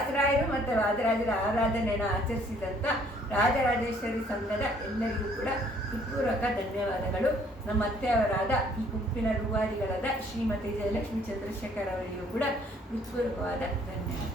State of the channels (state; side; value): normal; both; correlation 0.62